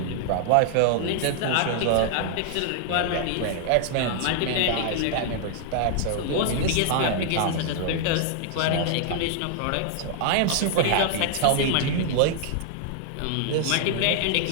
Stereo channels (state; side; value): different; both; correlation 0.00